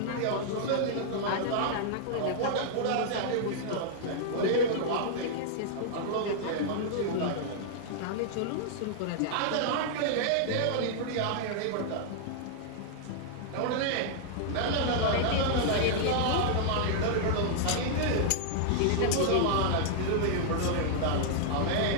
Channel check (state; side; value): different; both; correlation -0.01